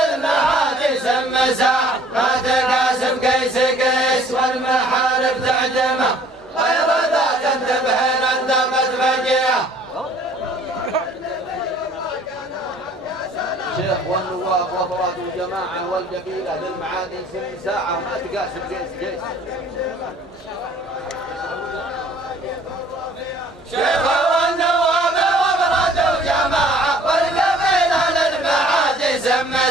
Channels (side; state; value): both; normal; correlation 0.55